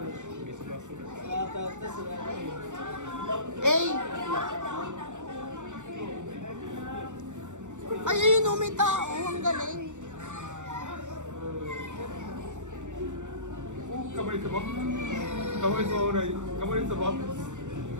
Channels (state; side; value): late; left; 0.85 ms